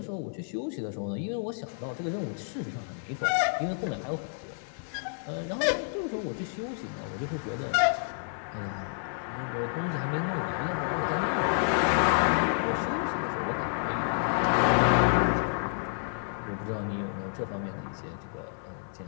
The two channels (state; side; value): silent; right; 58 dB below the other